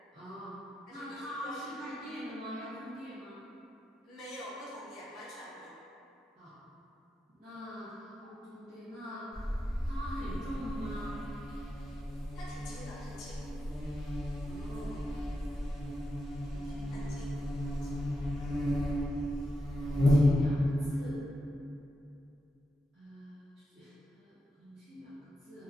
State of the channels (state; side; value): normal; both; correlation 0.87